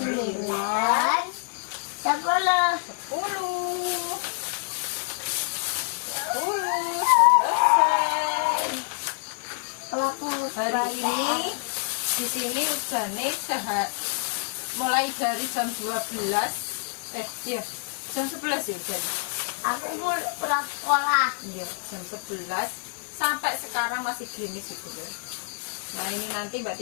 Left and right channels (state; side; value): silent; right; digital silence